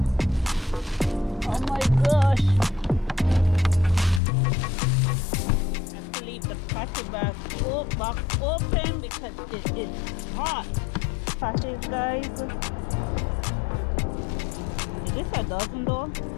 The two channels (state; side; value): drops out; right; at 4.2 s